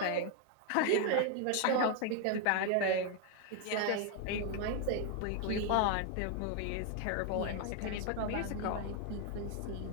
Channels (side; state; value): both; different; correlation 0.00